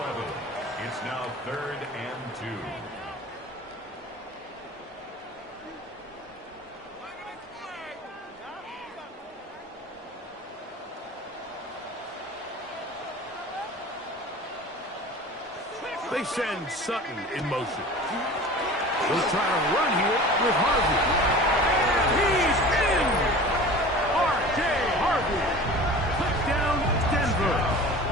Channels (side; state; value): both; normal; correlation 0.39